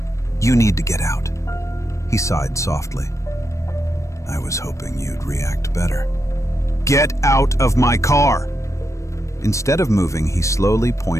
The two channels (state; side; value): late; right; 0.15 ms